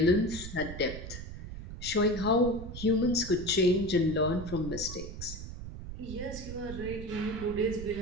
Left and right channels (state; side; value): noise; right; rumble, 9 dB below the sound